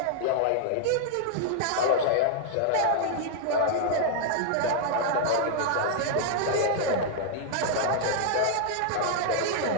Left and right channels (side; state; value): both; different; correlation -0.01